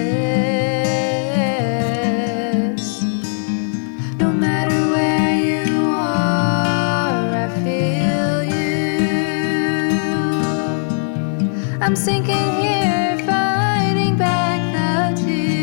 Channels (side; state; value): right; silent; digital silence